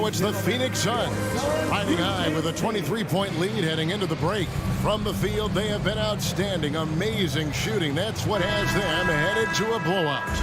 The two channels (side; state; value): both; identical; correlation 1.00